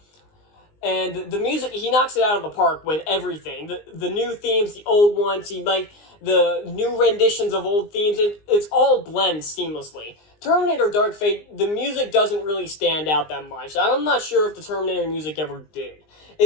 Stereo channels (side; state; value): right; late; 19 ms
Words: And the music, he knocks it out of the park with everything. The new themes, the old ones, the new renditions of old themes, it's all blends seamlessly. Terminator Dark Fate, the music doesn't really stand out that much. I'm not sure if the Terminator music ever did.